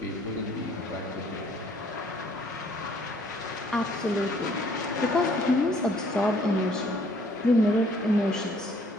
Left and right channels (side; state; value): both; normal; correlation 0.61